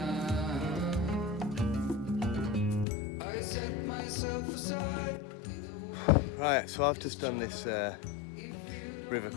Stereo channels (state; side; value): drops out; right; at 2.9 s